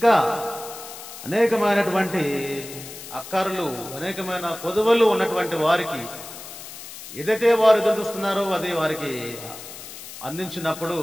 అనేకమైనటువంటి అక్కర్లు, అనేకమైన కొదువలు ఉన్నటువంటి వారికి ఏదైతే వారు ఎదురు చూస్తున్నారో అది వారికి అందించినప్పుడు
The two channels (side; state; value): left; noise; hiss, 13 dB below the sound